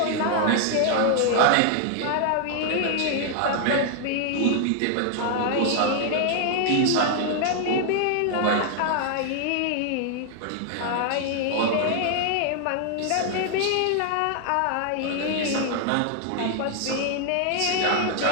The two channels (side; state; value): both; different; correlation 0.00